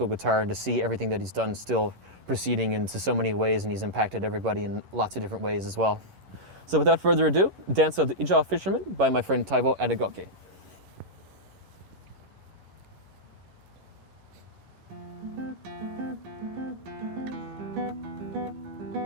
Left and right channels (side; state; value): left; late; 11 ms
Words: guitar and to see everything that he's done still proceeding into so many ways, and he's impacted everybody in lots of different ways as well. So without further ado, Dance of the Ijaw Fishermen by my friend Taiwo Edegoke.